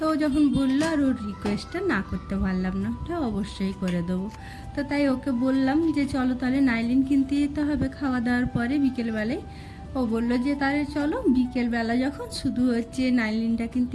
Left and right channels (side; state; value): both; identical; correlation 1.00